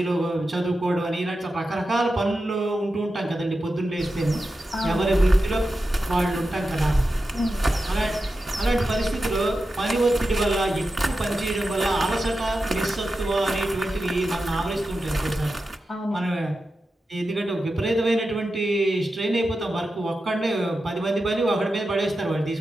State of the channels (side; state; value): both; normal; correlation 0.91